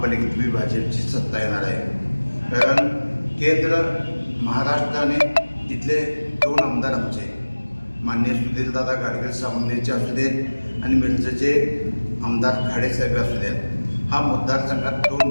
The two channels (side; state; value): both; inverted; correlation -1.00